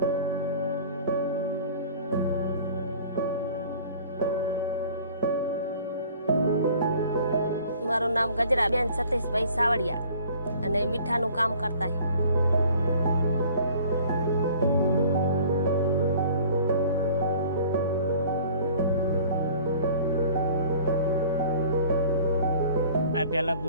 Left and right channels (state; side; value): inverted; both; correlation -0.49